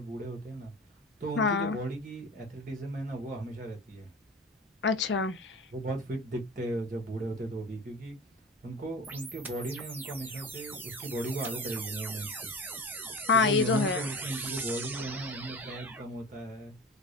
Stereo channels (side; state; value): both; normal; correlation 0.35